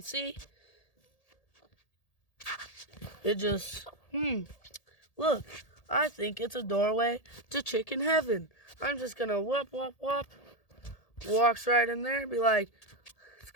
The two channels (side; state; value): right; late; 1.8 ms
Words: it just, look, I think it's a doorway to chicken heaven. I'm just gonna whoop, whoop, whoop. Walks right in there, be like, it's